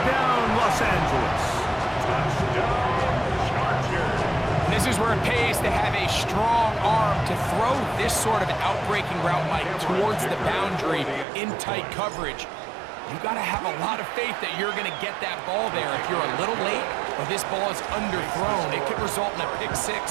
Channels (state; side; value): drops out; left; at 11.2 s